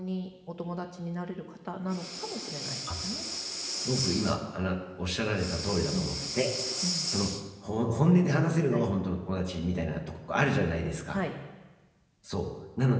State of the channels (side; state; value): both; identical; correlation 1.00